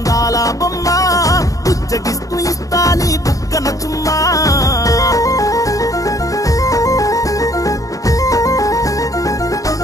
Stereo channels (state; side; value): late; right; 0.16 ms